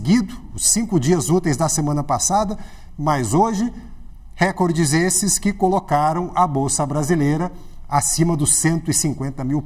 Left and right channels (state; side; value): identical; both; correlation 1.00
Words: os 5 dias úteis da semana passada, mas hoje, recordes esses que colocaram a Bolsa Brasileira acima dos 150 mil